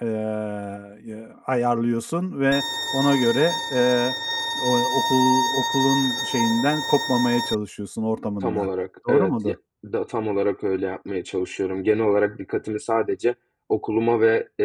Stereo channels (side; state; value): both; identical; correlation 1.00